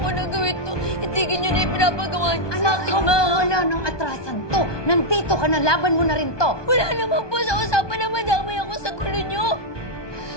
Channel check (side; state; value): right; late; 1.2 ms